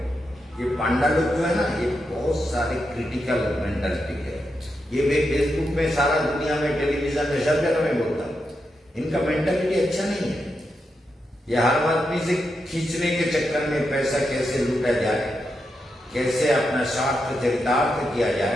ये पांडा लोग जो है ना, ये बहुत सारे क्रिटिकल मेंटालिटी है। ये मैं फेसबुक में, सारा दुनिया में, टेलीविजन में, सब जगह में बोलता हूँ, इनका मेंटालिटी अच्छा नहीं है। ये हर आदमी से खींचने के चक्कर में पैसा कैसे लूटा जाए, कैसे अपना स्वार्थ चरितार्थ किया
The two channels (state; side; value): normal; both; correlation 0.85